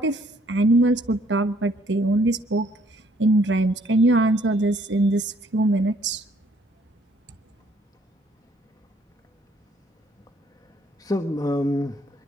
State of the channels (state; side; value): normal; both; correlation 0.64